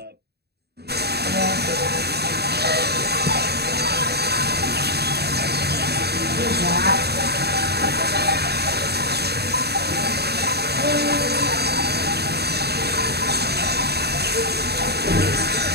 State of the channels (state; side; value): late; left; 0.47 ms